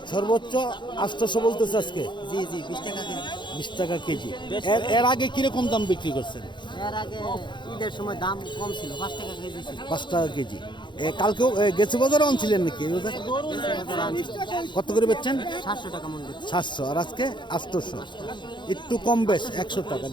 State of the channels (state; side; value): late; right; 0.23 ms